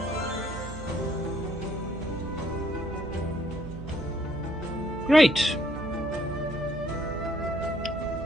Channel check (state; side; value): noise; right; hum, 9 dB below the sound